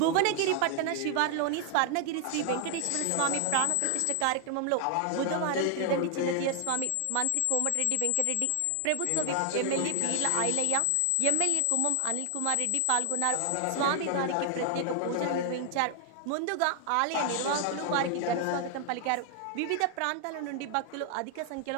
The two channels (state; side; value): different; both; correlation 0.00